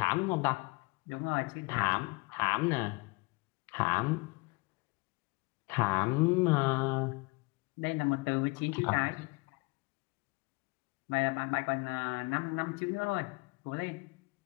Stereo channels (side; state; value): right; quieter; 27.0 dB